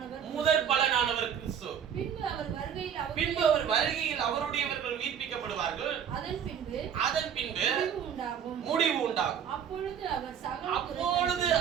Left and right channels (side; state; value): left; quieter; 8.3 dB